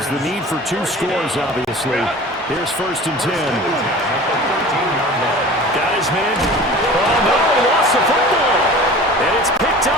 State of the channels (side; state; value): both; normal; correlation 0.40